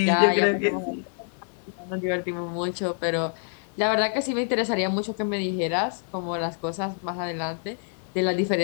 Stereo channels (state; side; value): silent; right; 58 dB below the other